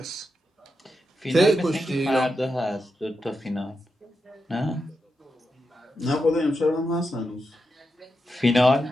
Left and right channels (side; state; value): both; normal; correlation 0.87